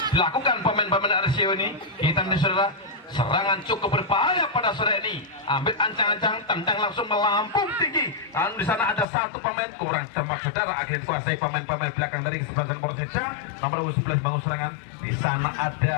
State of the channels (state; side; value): drops out; right; at 9.1 s